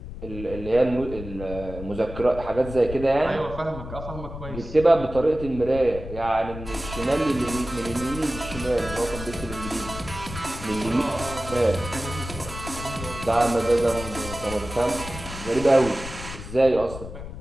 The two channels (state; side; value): noise; left; rumble, 10 dB below the sound